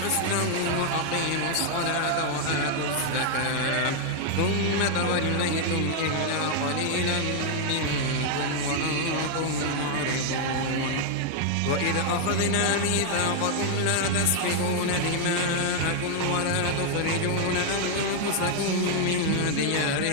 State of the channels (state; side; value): different; both; correlation 0.00